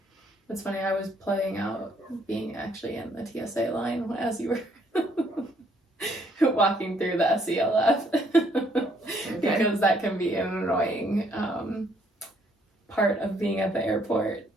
It's funny, I was playing out being actually in the TSA line as you were walking through the SELF. Because that can be an annoying part of being at the airport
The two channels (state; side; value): normal; both; correlation 0.67